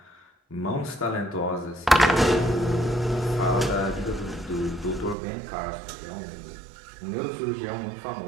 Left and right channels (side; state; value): left; drops out; at 5.2 s